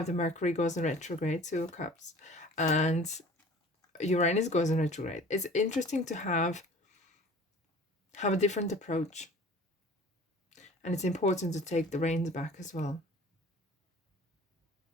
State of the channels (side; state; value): both; normal; correlation 0.45